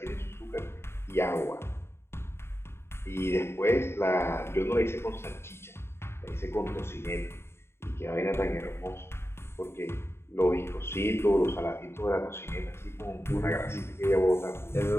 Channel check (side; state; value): right; late; 0.12 ms